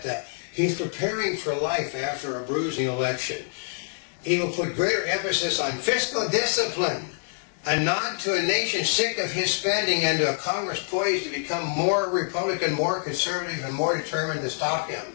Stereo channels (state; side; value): silent; right; digital silence